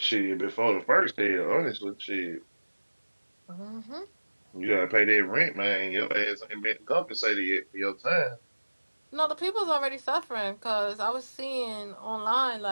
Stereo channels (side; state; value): both; inverted; correlation -1.00